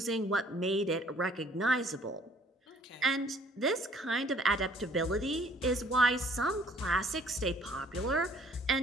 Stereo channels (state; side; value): normal; both; correlation 0.59